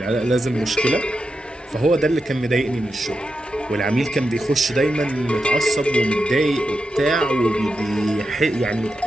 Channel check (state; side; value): normal; both; correlation 0.88